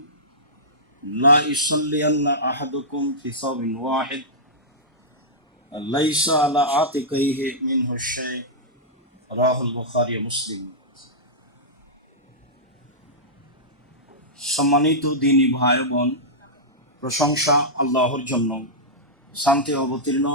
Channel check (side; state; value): both; normal; correlation -0.13